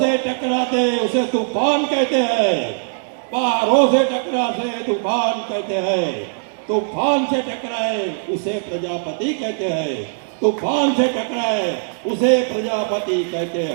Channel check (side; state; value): left; silent; 64 dB below the other